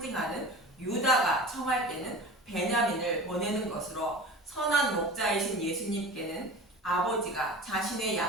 유다가 청할 때는 베냐민을 보내는 것으로 선한 목자이신 예수님께는 아버지가 자신의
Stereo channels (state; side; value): normal; both; correlation 0.36